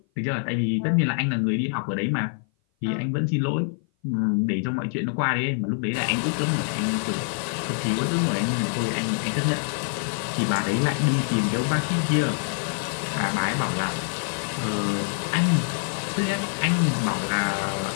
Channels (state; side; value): silent; right; 56 dB below the other